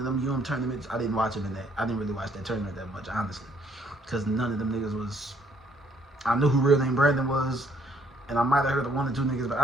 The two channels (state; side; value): normal; both; correlation 0.65